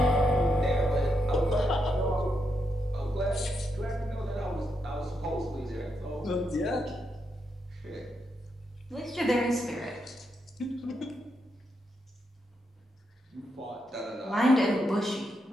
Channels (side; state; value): both; normal; correlation 0.82